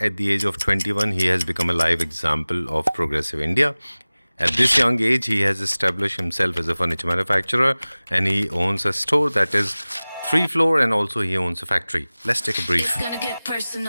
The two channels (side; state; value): both; inverted; correlation -0.99